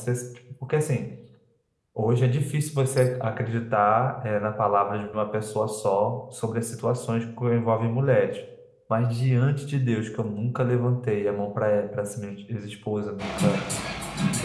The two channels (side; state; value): both; identical; correlation 1.00